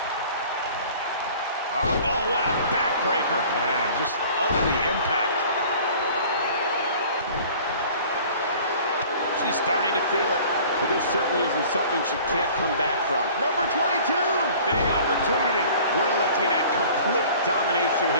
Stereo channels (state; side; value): inverted; both; correlation -0.47